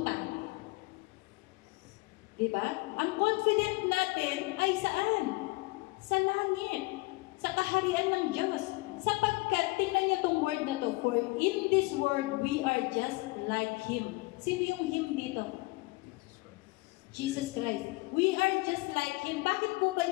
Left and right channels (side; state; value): right; quieter; 23.8 dB